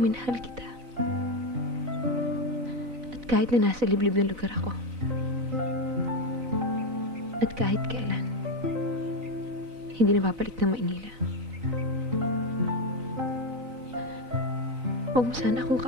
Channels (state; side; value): late; left; 4.0 ms